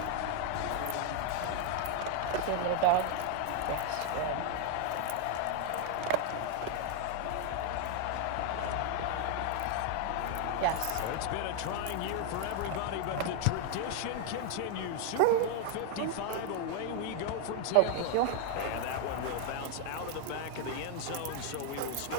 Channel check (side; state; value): both; different; correlation 0.00